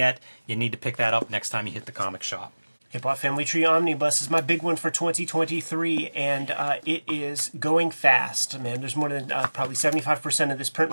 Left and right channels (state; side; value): inverted; both; correlation -1.00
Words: you need to pick that up next time you hit the comic shop. Hip Hop Family Tree Omnibus is my big one for 2023, and it is going fast, man. There's more than probably 75% of this print